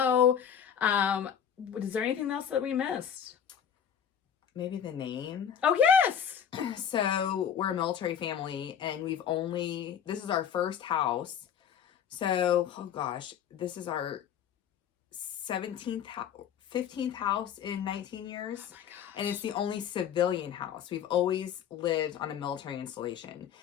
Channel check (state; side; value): quieter; right; 8.5 dB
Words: Is there anything else that we missed? Maybe the name. Oh, yes. So we're a military family, and this is our first house. So, oh gosh, this is our 15th house in 19 years. Oh my gosh. And it's the only civilian house. We've always lived on a military installation.